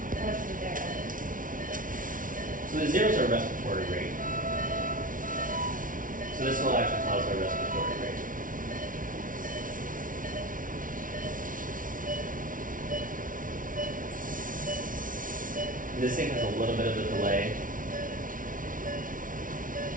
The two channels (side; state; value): left; late; 0.39 ms